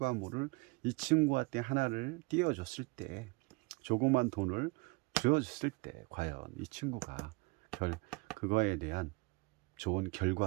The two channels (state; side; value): quieter; left; 27.3 dB